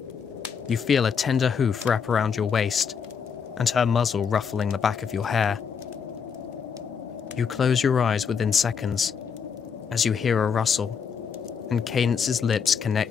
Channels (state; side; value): quieter; right; 6.5 dB